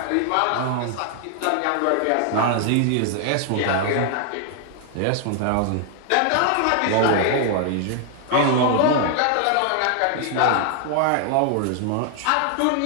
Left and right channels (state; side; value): different; both; correlation 0.00